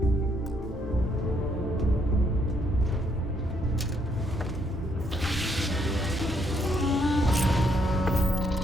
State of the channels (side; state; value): both; normal; correlation 0.72